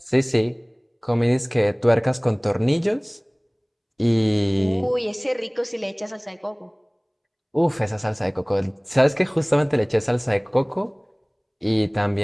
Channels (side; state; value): both; identical; correlation 1.00